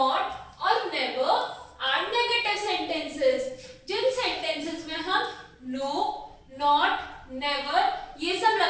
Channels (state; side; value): identical; both; correlation 1.00